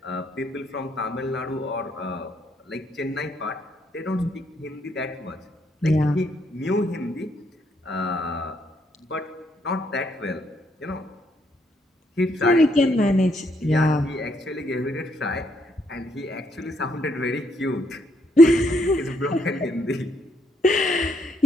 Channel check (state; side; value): normal; both; correlation 0.73